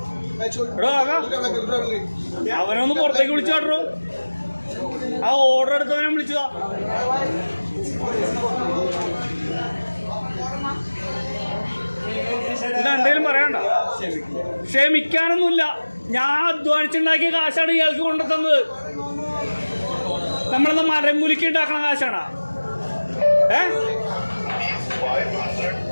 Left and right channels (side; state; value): both; inverted; correlation -1.00